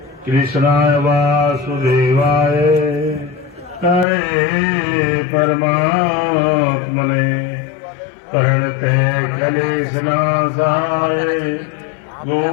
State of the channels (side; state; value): right; drops out; at 4.0 s